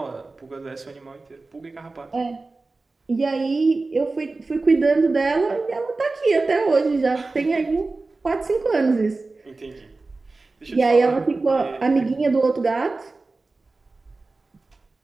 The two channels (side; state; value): left; quieter; 3.5 dB